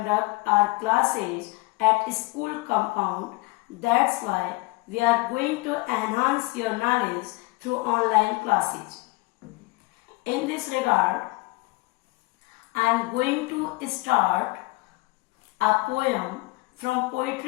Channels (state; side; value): quieter; right; 23.7 dB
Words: our classes at school compound. That's why we are going to enhance your knowledge through online classes. In this regard, I am going to start a poem from